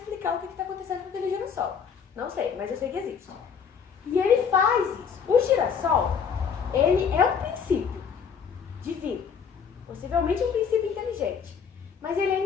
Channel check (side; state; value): right; quieter; 6.7 dB